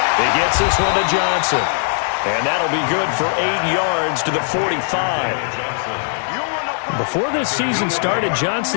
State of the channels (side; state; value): right; silent; digital silence